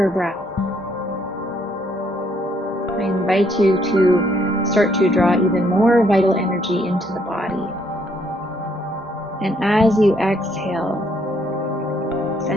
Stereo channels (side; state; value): both; normal; correlation 0.69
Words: breath, I invite you to start to draw even more vital energy into the body. And as you exhale,